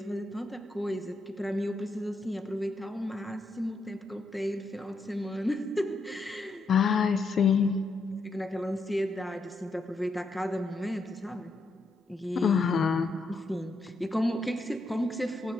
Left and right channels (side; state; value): right; quieter; 3.1 dB